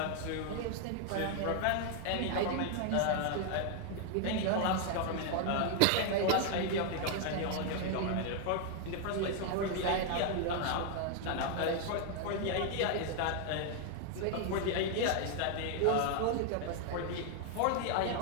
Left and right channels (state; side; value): different; both; correlation 0.00